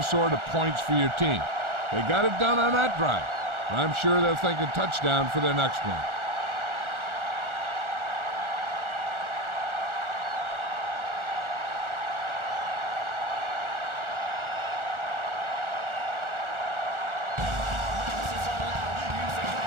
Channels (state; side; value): late; left; 1.4 ms